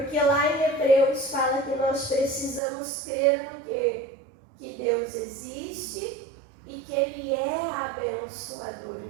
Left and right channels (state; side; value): drops out; left; at 2.6 s